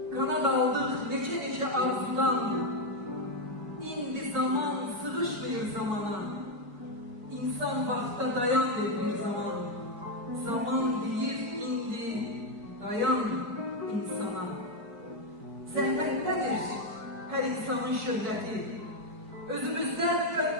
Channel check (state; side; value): late; left; 4.7 ms